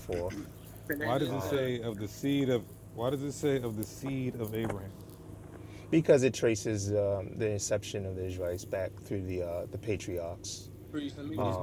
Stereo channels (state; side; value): identical; both; correlation 1.00